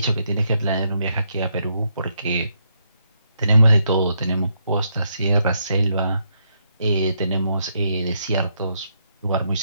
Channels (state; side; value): inverted; both; correlation -0.77